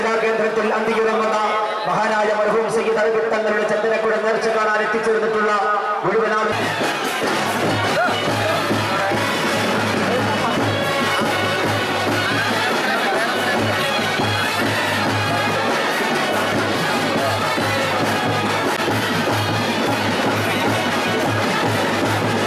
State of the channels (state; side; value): identical; both; correlation 1.00